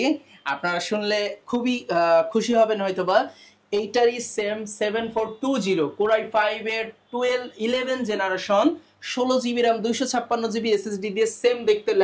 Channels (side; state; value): both; identical; correlation 1.00